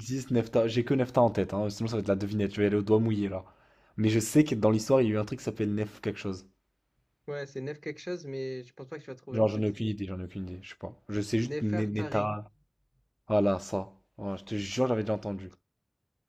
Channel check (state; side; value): identical; both; correlation 1.00